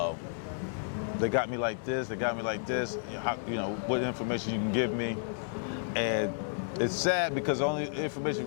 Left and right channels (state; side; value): silent; right; 57 dB below the other